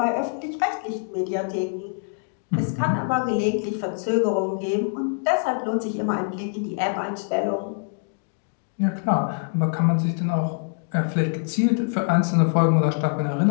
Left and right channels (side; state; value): right; silent; 61 dB below the other